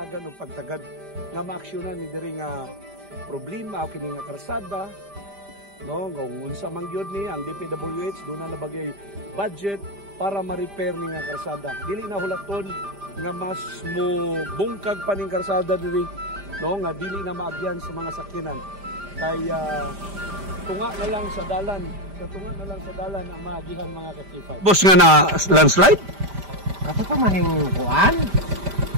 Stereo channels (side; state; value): left; late; 5.0 ms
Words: og pagtagad nga maaksyonan ni diri nga problema o kini nga karsada. No, kung unsa man gyud ni ang DPWH doon na nabagay budget para ma-repair ni nga karsada. Dili na hulaton nga mas mo bungkag pa ning karsada diri, no, nga dili na maagyan sa mga sakyanan. Kaya tunga na lang sa dalan, katunga na lang sa dalan ang maagihan mga ka-K5. Boss nga na landslide? Kato pa maning kuan?